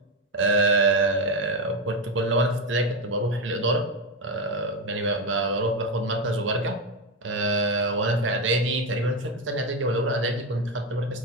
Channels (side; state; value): both; normal; correlation 0.11